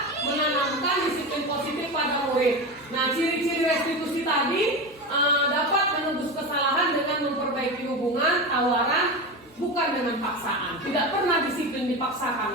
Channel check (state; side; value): normal; both; correlation 0.22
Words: menanamkan disiplin positif pada murid. Nah, ciri-ciri restitusi tadi dapat menebus kesalahan dengan memperbaiki hubungan, tawaran, bukan dengan paksaan. Tidak pernah disiplin